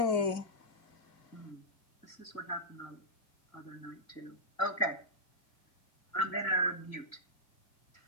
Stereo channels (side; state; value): right; late; 1.9 ms